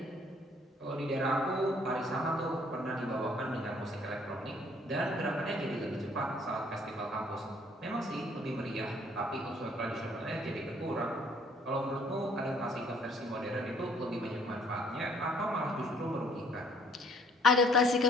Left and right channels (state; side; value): normal; both; correlation 0.61